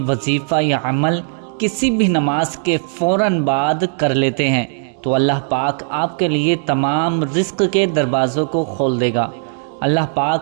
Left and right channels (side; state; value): left; silent; 64 dB below the other